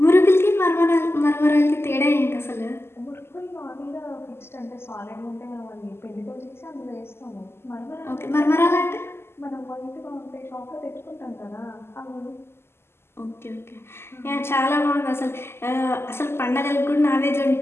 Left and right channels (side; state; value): right; late; 0.12 ms